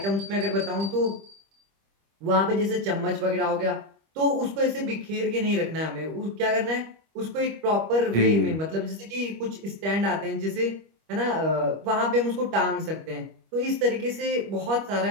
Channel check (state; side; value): late; left; 25 ms